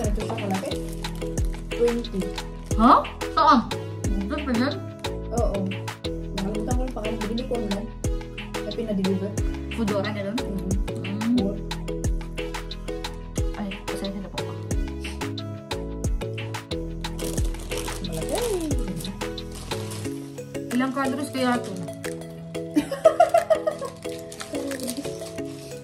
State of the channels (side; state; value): both; identical; correlation 1.00